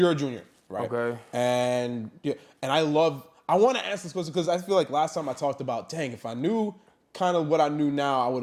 junior, right? Okay. And I want to answer this question because I feel like last time I talked about, dang, if I knew kind of what I knew now, I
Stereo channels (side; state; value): both; identical; correlation 1.00